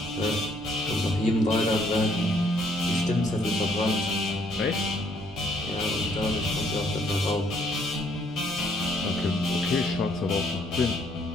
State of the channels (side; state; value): right; noise; rumble, 20 dB below the sound